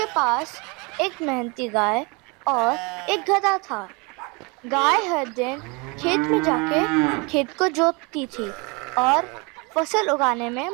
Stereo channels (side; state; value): left; quieter; 29.3 dB